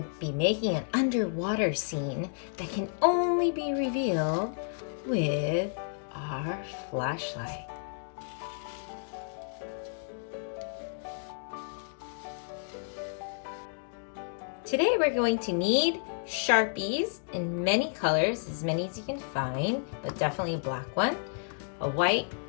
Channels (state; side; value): silent; right; digital silence